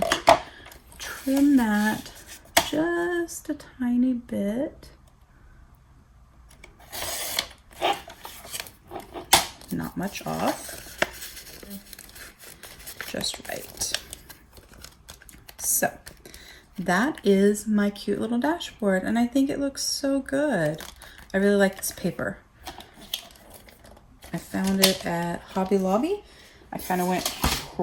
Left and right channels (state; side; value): identical; both; correlation 1.00